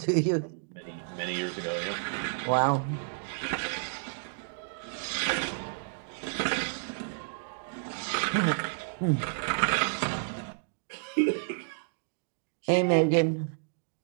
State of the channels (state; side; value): silent; left; digital silence